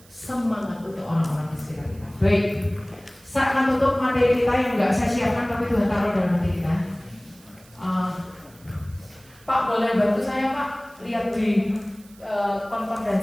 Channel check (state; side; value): noise; right; hiss, 26 dB below the sound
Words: semangat untuk orang-orang di sekitar kita. Baik, saya akan tutup materi kita yang nggak saya siapkan tapi Tuhan taruh dalam hati kita. Pak boleh bantu saya Pak lihat di